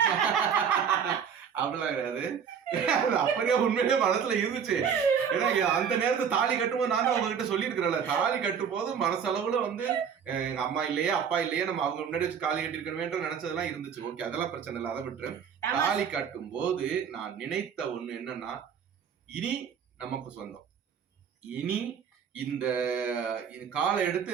அப்படிலாம் கிடையாது. அப்படியே உண்மையிலே மனசுல இருந்துச்சு. ஏன்னா அந்த நேரத்துல தாலி கட்டும்போது நான் தான் உங்ககிட்ட சொல்லியிருக்கிறேன்ல, தாலி கட்டும் போது மனசளவுல வந்து எங்க அம்மா இல்லையே அப்பா இல்லையே நம்ம அவங்க முன்னாடி வச்சு தாலி கட்டிருக்கணுமேன்ற நினைச்சதெல்லாம் இருந்துச்சு. ஓகே, அதெல்லாம் பிரச்சனை இல்லை, அதை விட்டுரு. தாலி கட்டும் போது நான் நினைத்த ஒண்ணு என்னன்னா, இனி நமக்கு சொந்தம். இனி இந்த காலை எடுத்து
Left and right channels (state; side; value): quieter; left; 7.3 dB